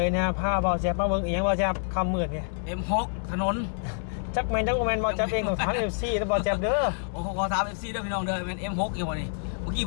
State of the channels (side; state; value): right; silent; digital silence